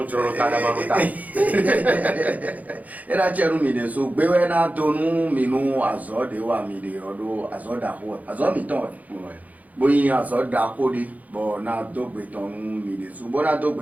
joro ta da maruta. Era chenu mi de so gbewe na tonu mi nu azo de wa mi de odo azo da ho. Azo mi ton. Boyin azo da ko de bo na dogbe ton mi de so bo na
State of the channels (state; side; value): late; left; 0.077 ms